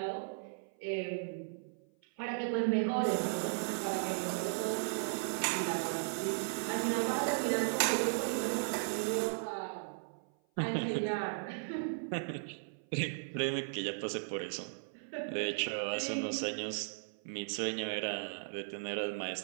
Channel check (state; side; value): silent; left; 54 dB below the other